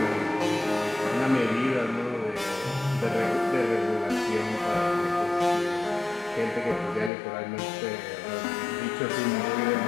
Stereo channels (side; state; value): right; drops out; at 7.1 s